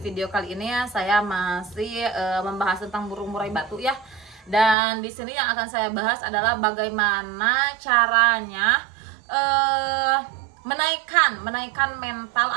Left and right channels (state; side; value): drops out; left; at 4.8 s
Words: kali ini ya saya masih membahas tentang burung murai batu ya. Dan di sini yang akan saya bahas adalah bagaimana caranya menaikkan